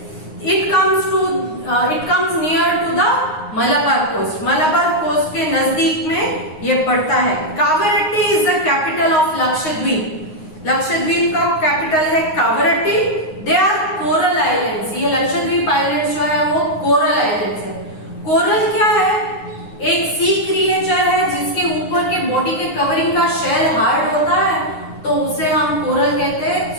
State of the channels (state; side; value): late; right; 9.6 ms